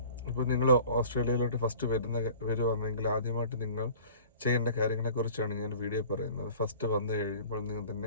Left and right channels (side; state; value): both; inverted; correlation -0.45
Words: ഇപ്പോൾ നിങ്ങൾ ഓസ്ട്രേലിയയിലോട്ട് ഫസ്റ്റ് വരുവാണെങ്കിൽ ആദ്യമായിട്ട് നിങ്ങൾ ചെയ്യേണ്ട കാര്യങ്ങളെക്കുറിച്ചാണ് ഞാൻ വീഡിയോ പറയുന്നത്. ഫസ്റ്റ് വന്നു കഴിയുമ്പോൾ